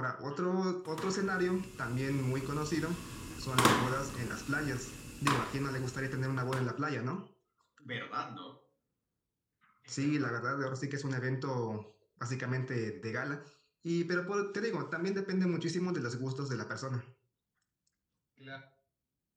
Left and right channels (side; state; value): both; identical; correlation 1.00